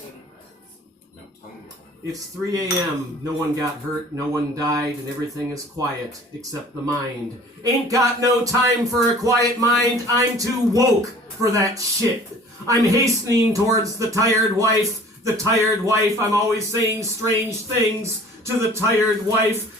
It's 3 a.m. No one got hurt, no one died, and everything is quiet except the mind. Ain't got no time for a quiet mind. I'm too woke for that shit. I'm hastening towards the tired wife. The tired wife, I'm always saying strange things to the tired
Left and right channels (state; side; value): normal; both; correlation 0.48